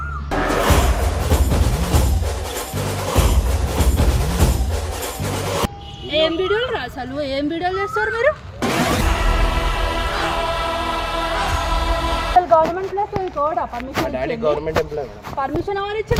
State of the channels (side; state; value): both; identical; correlation 1.00